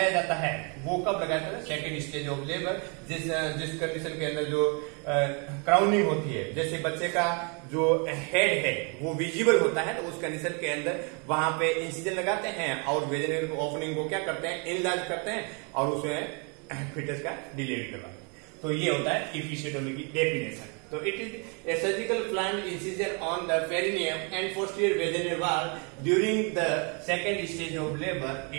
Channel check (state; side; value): quieter; left; 34.9 dB